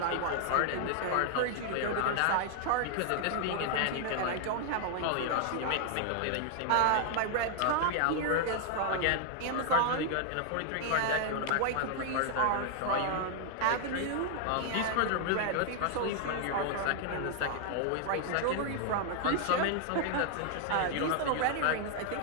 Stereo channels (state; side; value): different; both; correlation 0.00